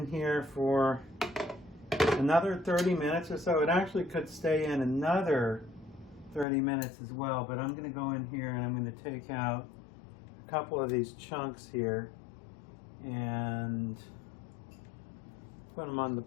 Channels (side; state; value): right; drops out; at 6.5 s